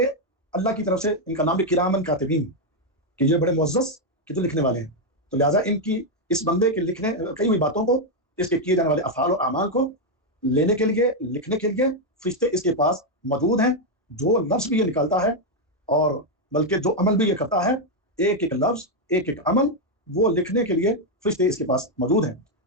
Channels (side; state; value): both; normal; correlation 0.02